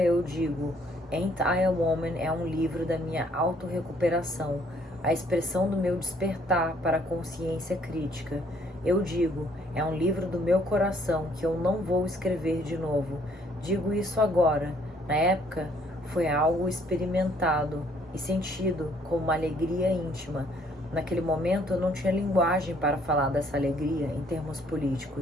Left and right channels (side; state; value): both; normal; correlation 0.64